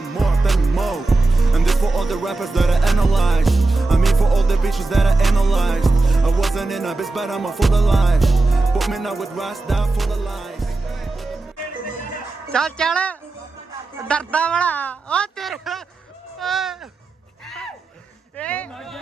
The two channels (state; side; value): quieter; left; 3.3 dB